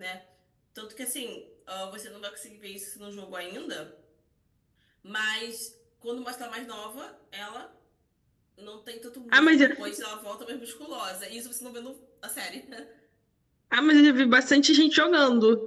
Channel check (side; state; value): both; identical; correlation 1.00